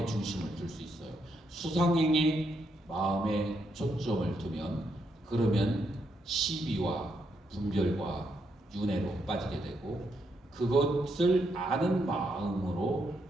중심을 둘 수 있어요. 수상행에 마음에 초점을 두면 그러면 시비와 분별과 윤회로 빠지게 되고 그것을 아는 마음으로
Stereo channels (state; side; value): normal; both; correlation 0.78